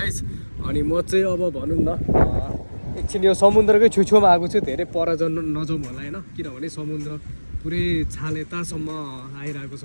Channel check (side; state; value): both; inverted; correlation -1.00